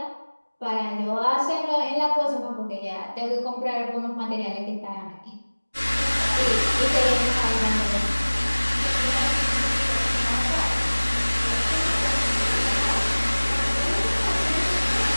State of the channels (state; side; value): inverted; both; correlation -1.00